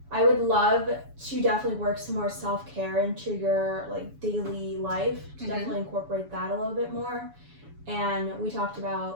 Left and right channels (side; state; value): left; late; 7.1 ms